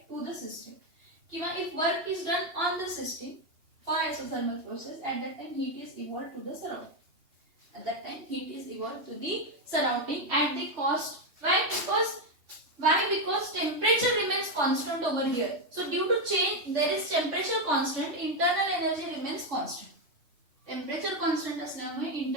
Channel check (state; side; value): late; left; 3.2 ms